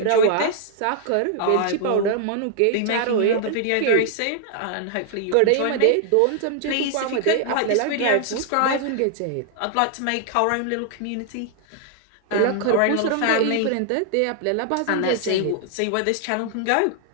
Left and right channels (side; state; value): both; different; correlation 0.00